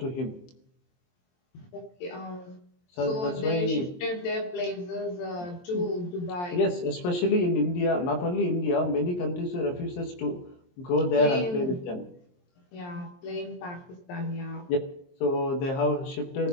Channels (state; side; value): late; right; 23 ms